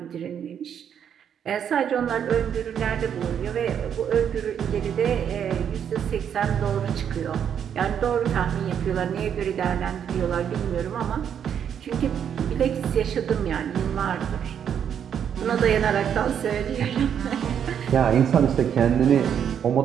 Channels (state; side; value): quieter; left; 8.5 dB